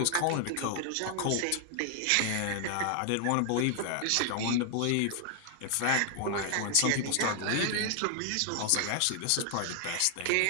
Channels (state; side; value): different; both; correlation 0.00